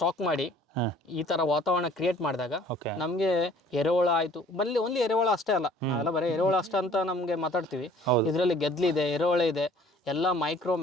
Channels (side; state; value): both; normal; correlation 0.54